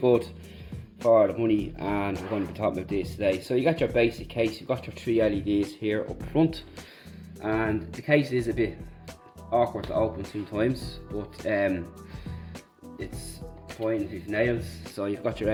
for the money, and we're going to be talking about this today. So you got your basic case, you've got your 3 LEDs here up front, and the case is a bit awkward to open sometimes, but it's fine if you've nails. So you've got your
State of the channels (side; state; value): both; identical; correlation 1.00